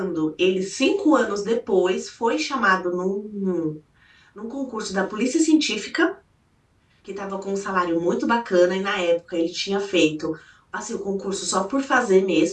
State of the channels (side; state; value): both; identical; correlation 1.00